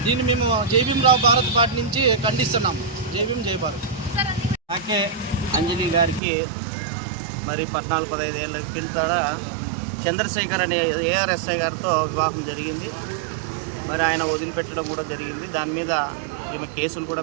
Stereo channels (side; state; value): left; drops out; at 6.2 s